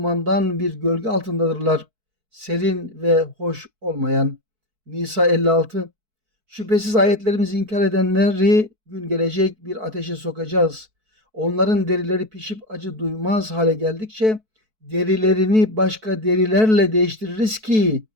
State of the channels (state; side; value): late; left; 4.6 ms